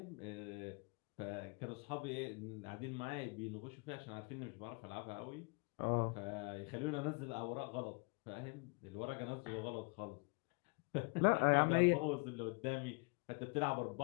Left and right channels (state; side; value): quieter; right; 32.2 dB